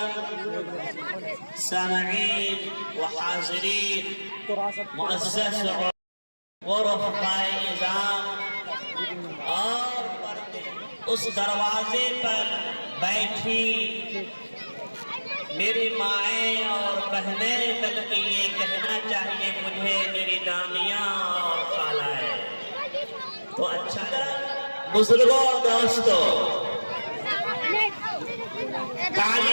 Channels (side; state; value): both; inverted; correlation -1.00